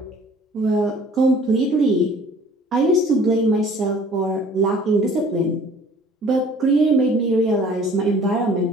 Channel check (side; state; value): both; normal; correlation 0.52